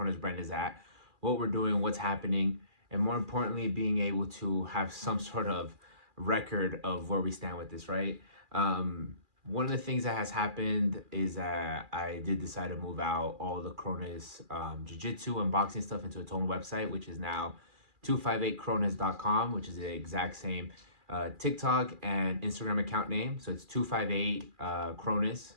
brand is at, what we're doing, what's happening, and more importantly, being able to have some sort of record of where we stand with this, right? One of the things that has happened is that I did decide to move out all the Kronis jiu-jitsu and boxing stuff into its own website, which is now 258kronis.com, which is the exact same TikTok and Instagram account name. So it's 258 Kronis,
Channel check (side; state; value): left; late; 2.4 ms